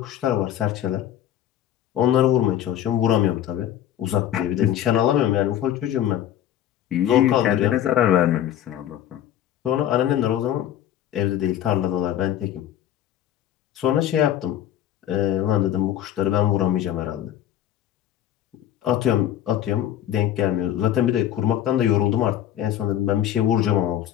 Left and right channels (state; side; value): quieter; right; 11.4 dB